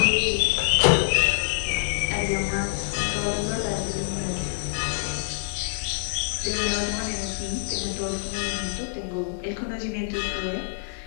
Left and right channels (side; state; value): right; silent; digital silence